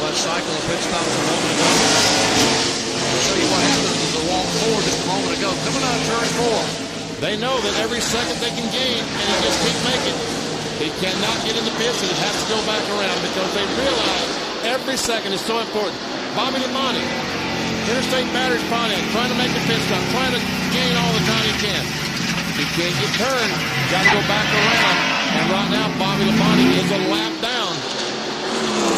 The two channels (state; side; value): identical; both; correlation 1.00